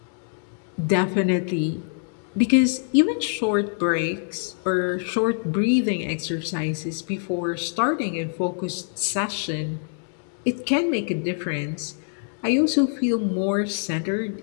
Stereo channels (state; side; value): silent; right; digital silence